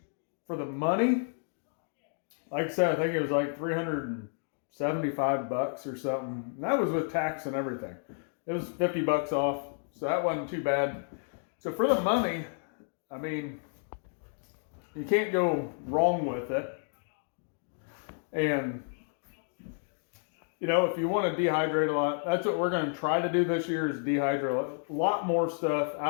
for the money, like I said, I think it was like $375 or something. And that was with tax and everything. It was $50 off, so that wasn't too bad. So for the money, I mean, you can't go wrong with it. And, you know, if you want to dehydrate a lot, that's what we're going to try to do this year, is dehydrate a lot more stuff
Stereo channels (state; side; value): silent; right; 57 dB below the other